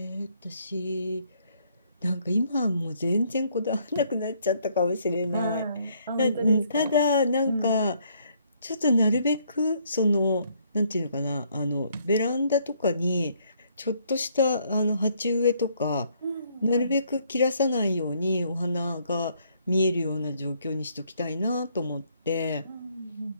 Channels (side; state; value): both; inverted; correlation -0.68